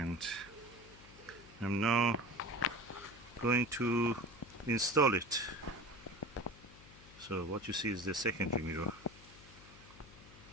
I'm now going to install it. So what you see is the secondary mirror.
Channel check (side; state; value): left; noise; hum, 20 dB below the sound